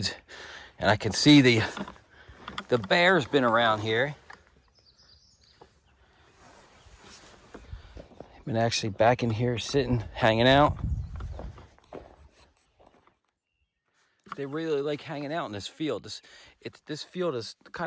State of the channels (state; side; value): identical; both; correlation 1.00